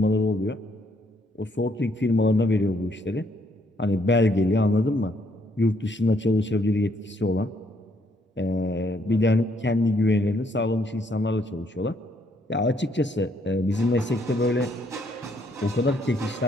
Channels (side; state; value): both; normal; correlation 0.70